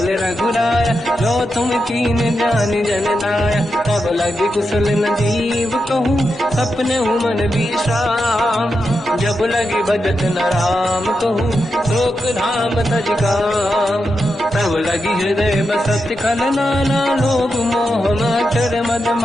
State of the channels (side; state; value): both; normal; correlation 0.87